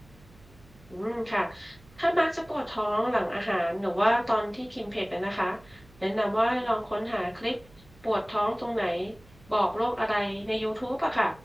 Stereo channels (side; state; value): right; noise; hum, 25 dB below the sound